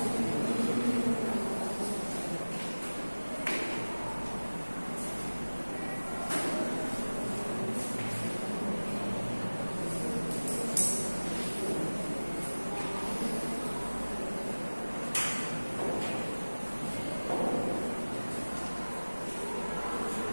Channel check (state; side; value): inverted; both; correlation -1.00